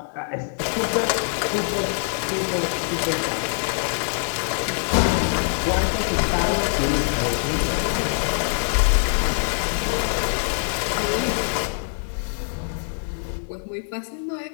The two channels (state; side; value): silent; right; digital silence